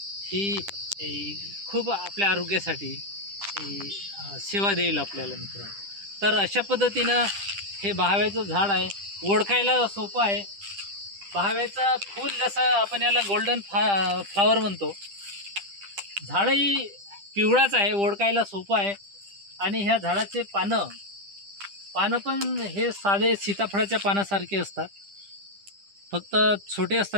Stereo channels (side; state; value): left; late; 10 ms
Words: ही खूप आपल्या आरोग्यासाठी सेवा देईल आपल्याला मित्रांनो। तर अशा पद्धतीनं हे बहाव्याचं झाड आहे, ओळखायला सोपं आहे। बहाव्याचा फूल जसं आपण याला गोल्डन फ्लावर म्हणतो, झाडही पिवळाच आहे, ओळखायला सोपं आहे। आणि ह्या झाडाचे पानं पानं पण हे साधे सीताफळाच्या पानासारखे असतात, फक्त छोटे